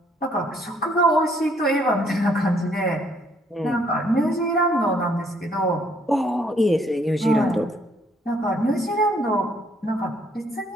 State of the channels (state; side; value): normal; both; correlation 0.66